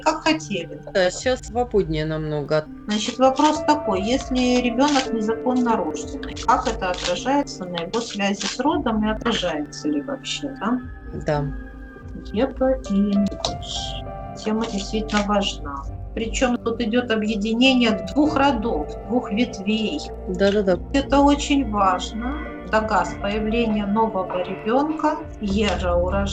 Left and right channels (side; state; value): both; identical; correlation 1.00